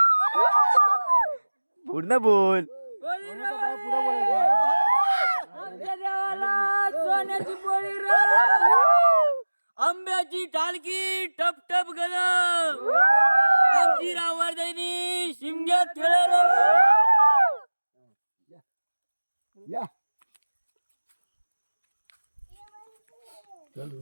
पूर्ण बोल आमच्या देवाला सोन्याची पोळी रे आंब्याची टालकी टप टप गल आमची रावरदैनी शिमग्यात खेळ या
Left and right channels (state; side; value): inverted; both; correlation -1.00